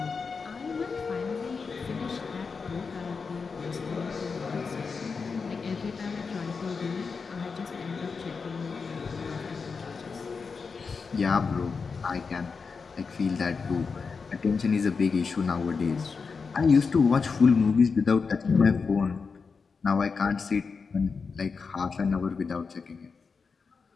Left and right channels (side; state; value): right; quieter; 5.1 dB